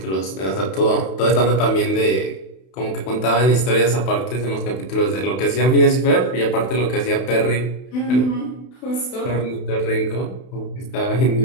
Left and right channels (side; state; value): right; late; 31 ms